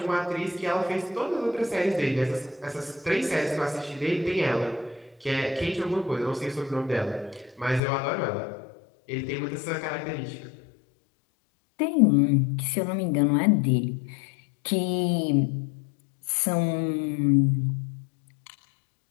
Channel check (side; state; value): right; drops out; at 7.8 s